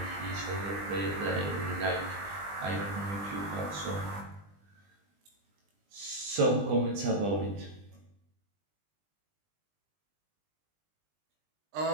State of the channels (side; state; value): left; late; 20 ms